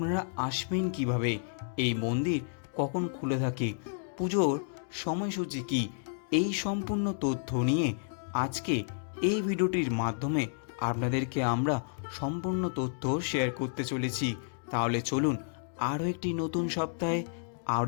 আসবেন কিভাবে, এই মন্দির কখন খুলে থাকে, পুজোর সময়সূচি কি, এই সম্পূর্ণ তথ্য নিয়ে আজকে এই ভিডিওটির মাধ্যমে আপনাদেরকে আমরা সম্পূর্ণ তথ্য শেয়ার করতে চলেছি। তাহলে চলুন আরও একটি নতুন সপ্তাহে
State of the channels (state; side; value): silent; right; digital silence